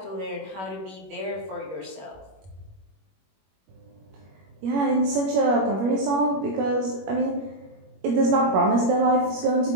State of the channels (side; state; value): left; late; 21 ms